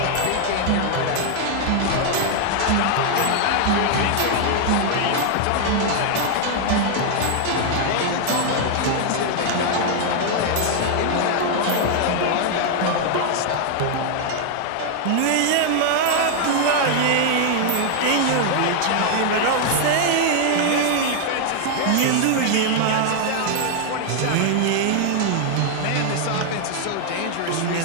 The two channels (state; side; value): different; both; correlation 0.00